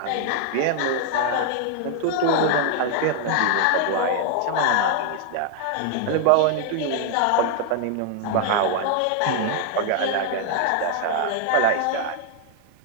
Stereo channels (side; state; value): both; different; correlation 0.00